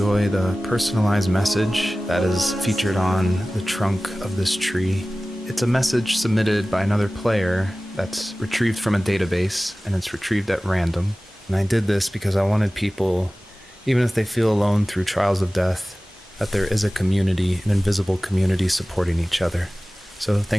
the personalized message that is featured on the trunk of this tree. It's a message submitted by another player that's retrieved from a database, and it's retrieved at random. And I did this because I wanted people, even if they feel alone through trials of death, that there is a community, an invisible community supporting each other. So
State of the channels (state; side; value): normal; both; correlation 0.97